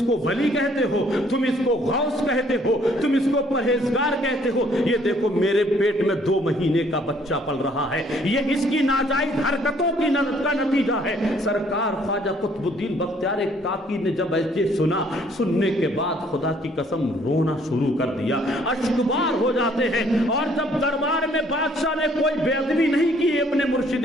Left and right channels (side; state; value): both; normal; correlation 0.62